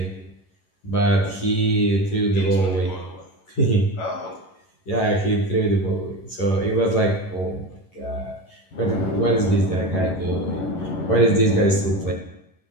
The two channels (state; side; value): late; right; 11 ms